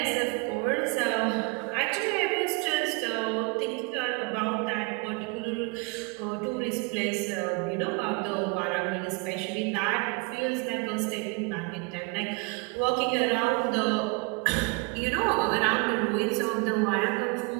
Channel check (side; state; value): left; quieter; 30.5 dB